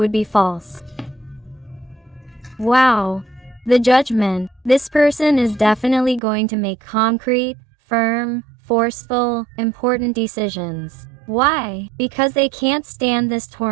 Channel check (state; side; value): drops out; left; at 6.2 s